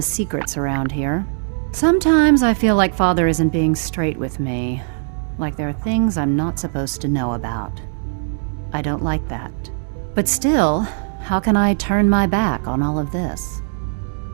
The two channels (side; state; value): left; silent; 65 dB below the other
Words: secrets around here. Sometimes I feel like Father isn't being straight with me. Like there are things I'm not supposed to know about. I don't like that. But still, how can I turn my back on all of this?